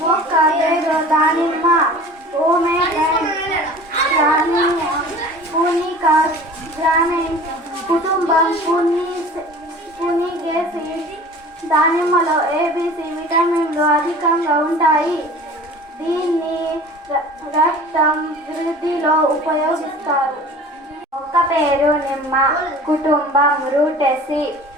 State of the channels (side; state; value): both; normal; correlation 0.43